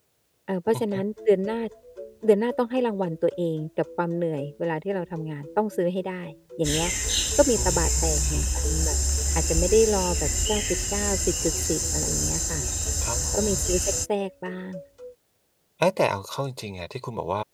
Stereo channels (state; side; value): identical; both; correlation 1.00